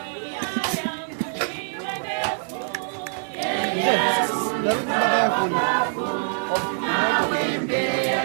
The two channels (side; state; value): left; silent; 61 dB below the other